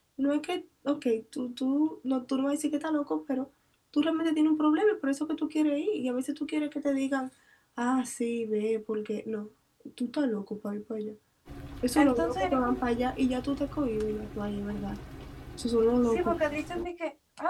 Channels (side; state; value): both; identical; correlation 1.00